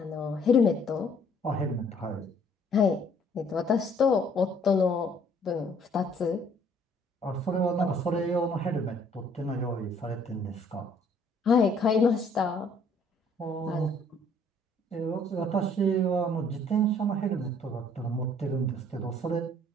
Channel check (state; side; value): normal; both; correlation 0.61